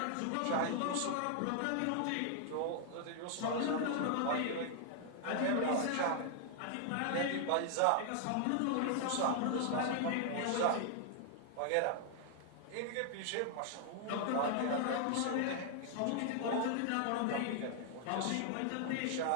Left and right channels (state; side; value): different; both; correlation 0.00